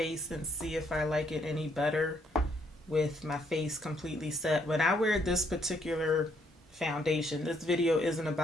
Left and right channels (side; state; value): both; normal; correlation 0.70